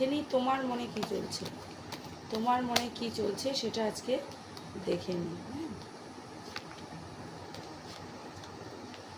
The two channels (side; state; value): both; identical; correlation 1.00